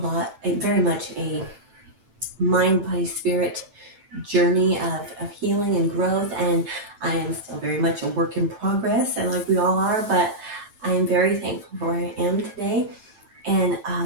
much a mind, body, spirit journey of healing and growth. And I am still very much a work in progress, and like we all are, but I am very thankful for where I am today. And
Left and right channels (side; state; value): left; late; 9.0 ms